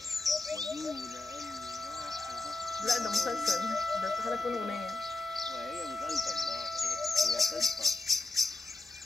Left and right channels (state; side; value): quieter; right; 3.2 dB